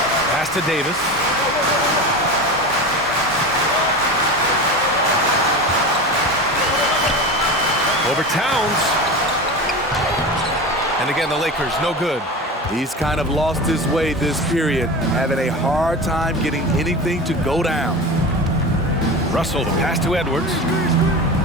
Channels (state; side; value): normal; both; correlation 0.28